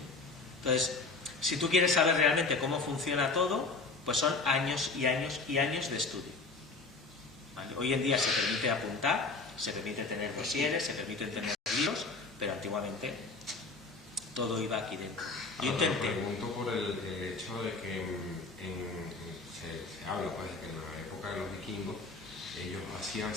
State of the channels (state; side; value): quieter; right; 3.8 dB